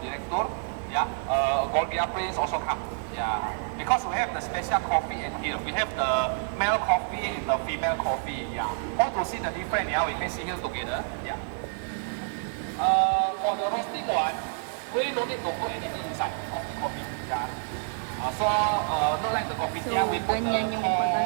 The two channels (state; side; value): silent; left; digital silence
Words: director. Yeah, Gorgia Prince also come. Yeah, because we have the special coffee in here. We have the male coffee and the female coffee. Yeah, want to see the difference? Yeah, we can see here together. Yeah. For the roasting one, we don't need to put anything inside of the coffee. Yeah. Not like the coffee. Yeah, we put the ganyan yung corn,